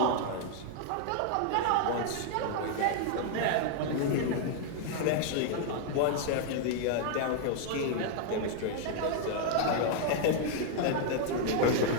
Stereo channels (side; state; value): both; different; correlation 0.00